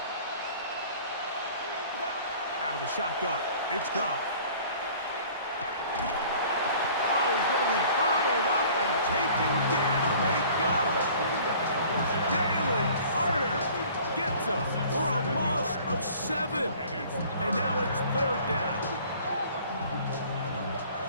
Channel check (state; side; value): inverted; both; correlation -0.50